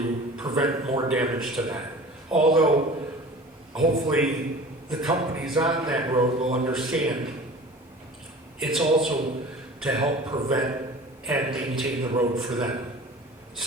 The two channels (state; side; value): normal; both; correlation 0.41